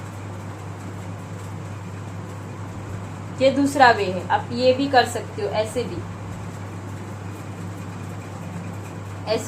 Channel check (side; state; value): both; identical; correlation 1.00